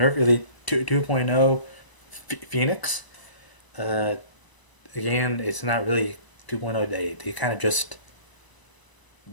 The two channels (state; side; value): late; right; 1.0 ms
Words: Elite 2.0 Phoenix. Uh, Again, it's not really 2.0. They kind of just